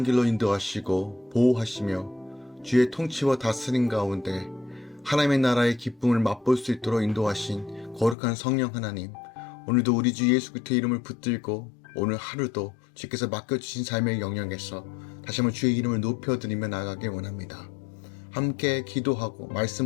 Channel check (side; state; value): right; drops out; at 8.2 s